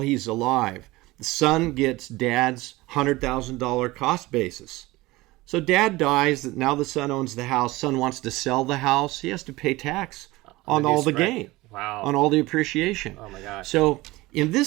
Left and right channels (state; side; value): quieter; left; 20.0 dB